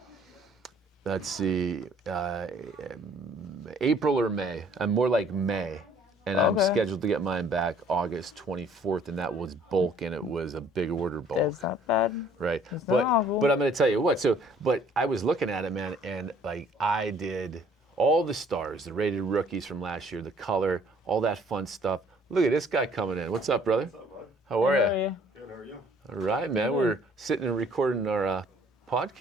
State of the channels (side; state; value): both; normal; correlation 0.58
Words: let's see, April or May. I'm more like May. And I'm scheduled to get mine back August 24th, and that was bulk, and it was a big order bulk. That's not bad. Right. It's not awful. But I'm going to tell you what. But I was looking at it, man, and I did all the stars, the rated rookies from last year, the color, all that fun stuff. Look at this guy coming in. What's up, brother? What's up, bud? How are How are you? you? Good, how are you? All right, man. We're sitting and recording our